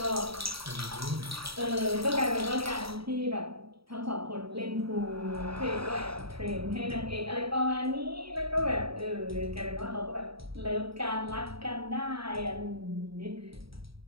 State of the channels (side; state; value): left; late; 0.75 ms